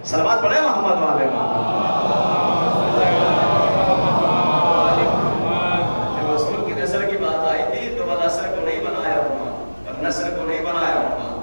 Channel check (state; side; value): inverted; both; correlation -1.00